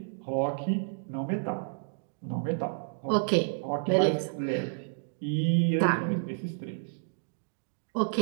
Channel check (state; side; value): silent; left; digital silence